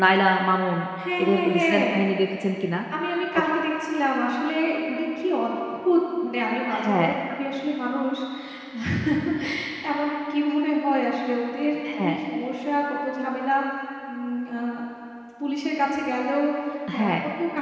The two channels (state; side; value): identical; both; correlation 1.00